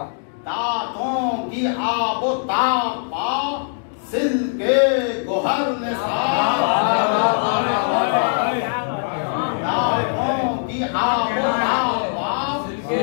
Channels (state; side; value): silent; right; digital silence